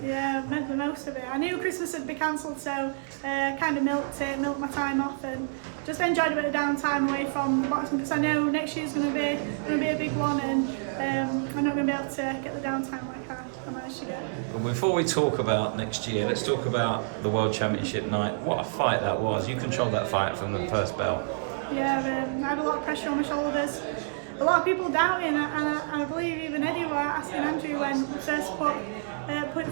Yeah, I've made the most of it. I knew Christmas had been cancelled, so kind of milked my time off and just enjoyed a bit of downtime away from the boxing, because I know next year's going to be a big one, and I'm not going to be able to get the downtime like I managed to get. But before we talk about next year, let's talk about the World Championship night. What a fight that was. You controlled that fight from the first bell. Yeah, I had a lot of pressure on my shoulders. A lot of people doubting, and I believe even Eddie were asking Andrew when we first put it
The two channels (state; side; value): silent; left; digital silence